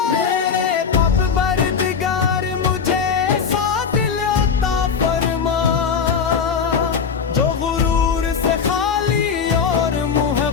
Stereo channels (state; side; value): quieter; right; 6.3 dB